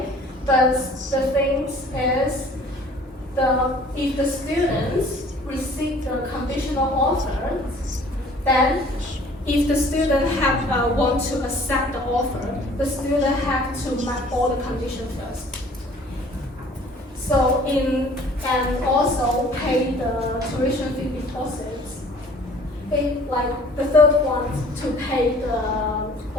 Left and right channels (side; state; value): both; normal; correlation 0.52